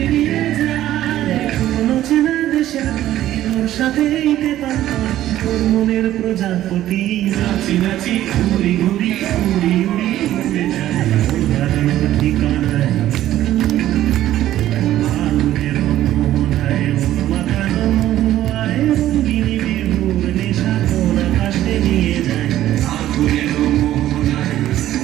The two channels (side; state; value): left; quieter; 13.3 dB